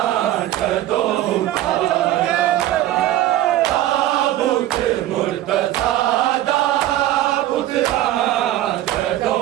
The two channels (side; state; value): left; quieter; 13.9 dB